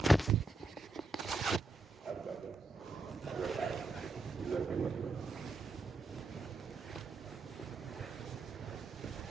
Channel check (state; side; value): quieter; left; 3.2 dB